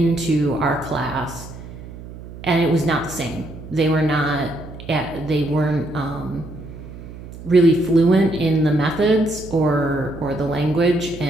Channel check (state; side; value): noise; right; hum, 14 dB below the sound